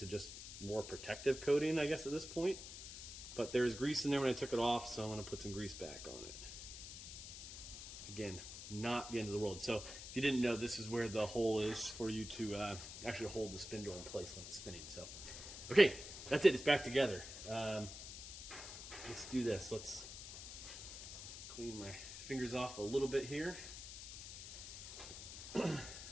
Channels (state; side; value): noise; left; hiss, 10 dB below the sound